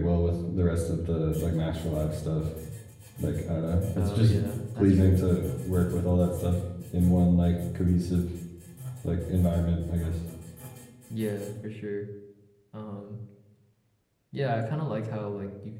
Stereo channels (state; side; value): identical; both; correlation 1.00